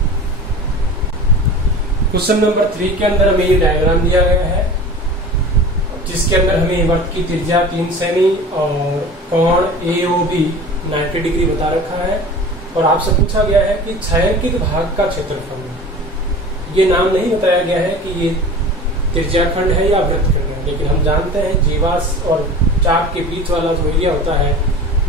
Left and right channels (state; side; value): normal; both; correlation 0.37